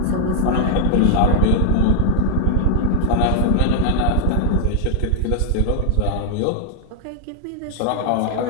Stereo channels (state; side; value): different; both; correlation 0.01